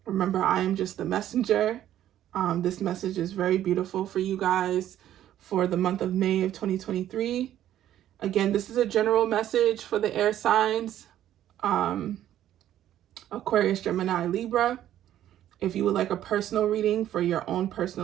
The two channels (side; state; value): left; quieter; 11.9 dB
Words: Remember, I am just the messenger. This message is very beautiful for you guys for the month of May of 2023. Again, this is a general message for the air signs, Aquarius, Gemini, Libra. If you would like a personal reading for your own